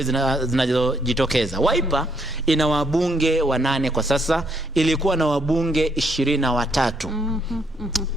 zinazojitokeza. Wiper ina wabunge 8 kwa sasa, ilikuwa na wabunge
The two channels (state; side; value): normal; both; correlation 0.71